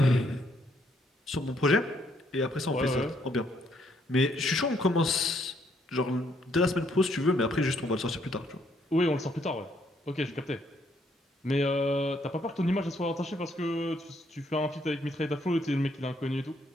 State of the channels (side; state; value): both; normal; correlation 0.71